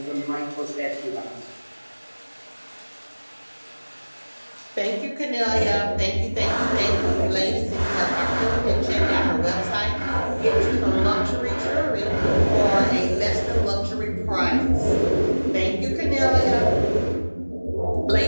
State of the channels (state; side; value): inverted; both; correlation -1.00